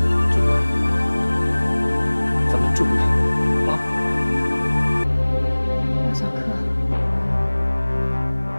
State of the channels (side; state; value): both; inverted; correlation -1.00